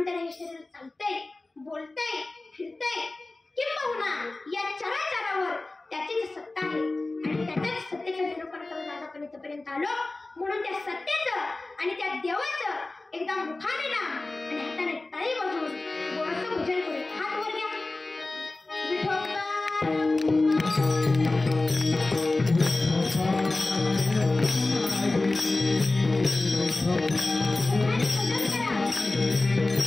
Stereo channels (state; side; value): quieter; right; 3.1 dB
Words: त्याला हे शरीर चालतंय, बोलतंय, फिरतंय. किंबहुना या चराचरावर त्याचीच सत्ता आहे आणि त्याच्याच सत्तेचा निरूपण करून आज आपण इथपर्यंत आलो. म्हणून त्या सत्तेचं आणि त्या देवाचं एकदा मुखाने नाम आणि हाताने टाळी वाजवून गोडसं भजन करू. हात वर घ्या.